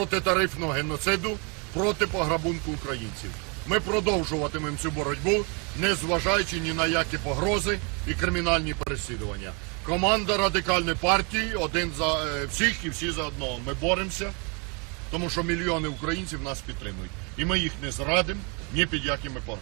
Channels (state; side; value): quieter; left; 33.4 dB